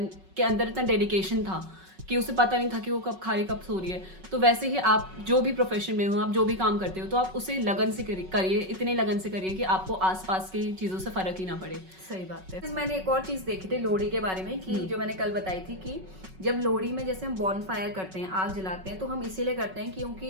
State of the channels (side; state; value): left; late; 5.3 ms